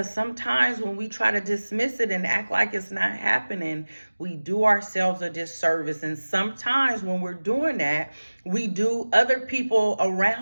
sometimes when we try to dismiss it and act like it's not happening, we do ourselves a disservice. And sometimes when we're doing that, we do other people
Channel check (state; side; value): inverted; both; correlation -1.00